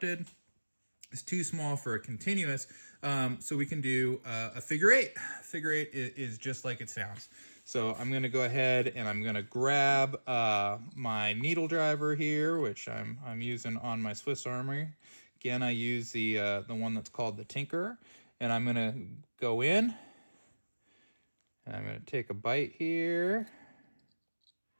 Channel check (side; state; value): both; inverted; correlation -1.00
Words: It's too small for a continuous. So we can do a figure-8. Figure-8 is just like it sounds. So I'm going to go ahead and I'm going to grab my needle driver here, which I'm using on my Swiss Army. Again, I use the one that's called the Tinker, and I'm going to go in and I'm going to take a bite here.